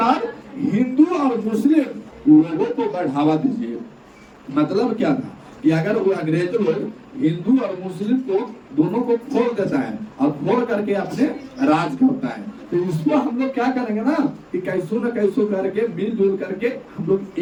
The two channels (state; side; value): identical; both; correlation 1.00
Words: हिंदू और मुस्लिम लोगों को बढ़ावा दीजिए। मतलब क्या था कि अगर वो अंग्रेज लोग हिंदू और मुस्लिम को दोनों को खोल देता है और खोल करके अपने राज करता है, तो इसको हम लोग क्या करेंगे ना कि कैसो न कैसो करके मिलजुल करके हम लोग